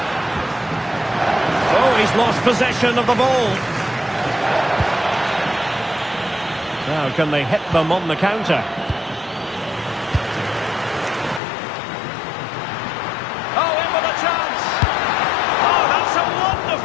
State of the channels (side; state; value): right; drops out; at 11.4 s